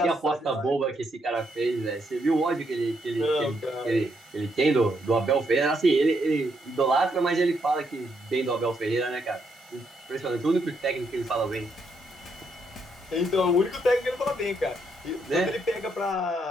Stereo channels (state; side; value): normal; both; correlation 0.76